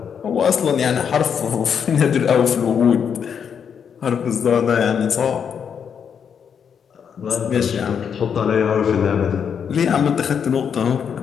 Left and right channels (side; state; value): right; quieter; 7.3 dB